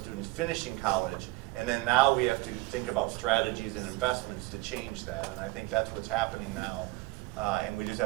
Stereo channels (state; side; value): quieter; left; 20.3 dB